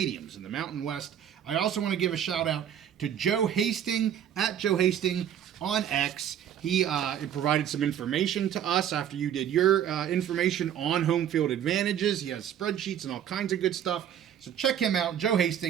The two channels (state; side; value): quieter; left; 9.7 dB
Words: in the Mountain West. I also want to give a shout out to Joe Hasting at Joe Hasting on X. He provided some information to us after you did your information on home field advantages. He has spreadsheets and all kinds of good stuff. So check him out, Joe